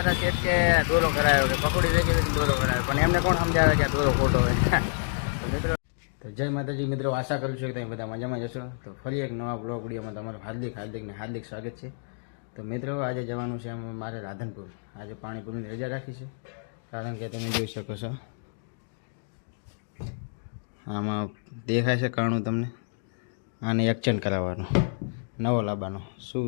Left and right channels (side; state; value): right; silent; digital silence